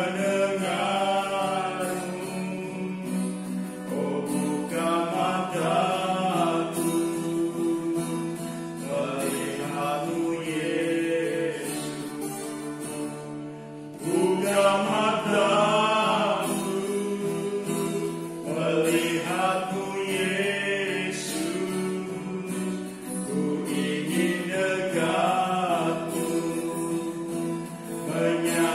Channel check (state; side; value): identical; both; correlation 1.00